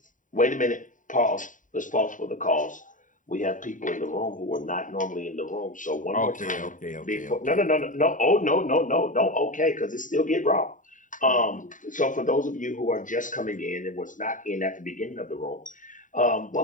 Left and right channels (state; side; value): late; right; 0.38 ms